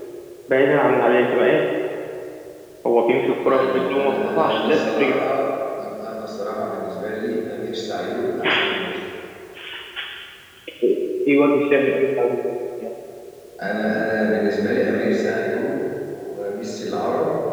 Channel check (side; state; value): both; identical; correlation 1.00